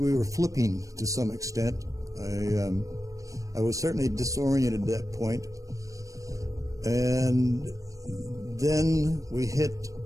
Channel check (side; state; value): left; late; 0.16 ms